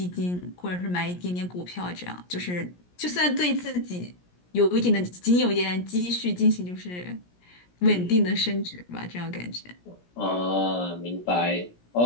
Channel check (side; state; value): right; late; 17 ms